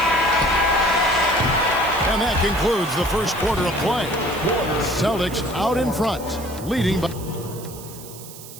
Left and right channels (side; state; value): right; noise; hiss, 16 dB below the sound